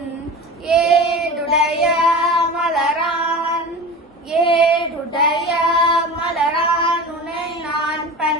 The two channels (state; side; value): normal; both; correlation 0.32